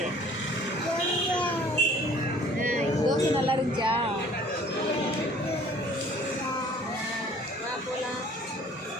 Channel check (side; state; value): both; normal; correlation 0.53